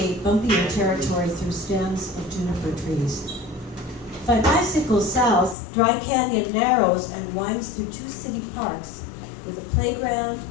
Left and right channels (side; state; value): right; drops out; at 5.6 s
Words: bumpier territory through stands of juniper trees. If I bicycle south, Dry Canyon narrows and winds through 2 city parks with a playground,